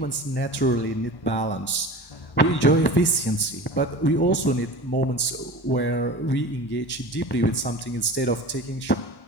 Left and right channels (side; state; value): right; late; 1.1 ms